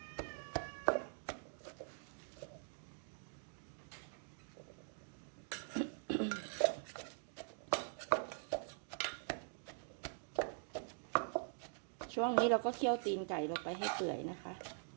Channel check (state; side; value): silent; left; digital silence